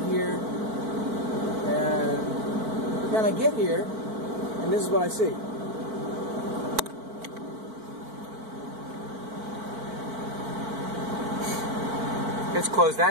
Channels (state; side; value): late; left; 4.5 ms